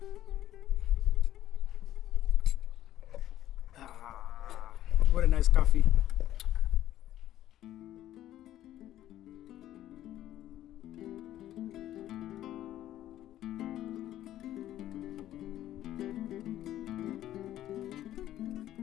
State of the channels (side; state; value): right; quieter; 12.9 dB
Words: What a nice coffee.